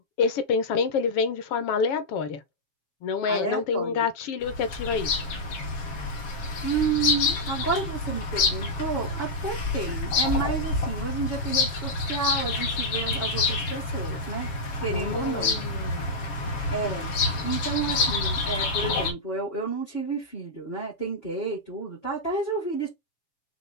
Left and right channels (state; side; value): late; right; 7.3 ms